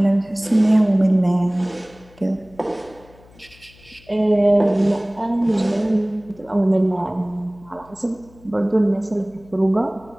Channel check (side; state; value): left; noise; hum, 26 dB below the sound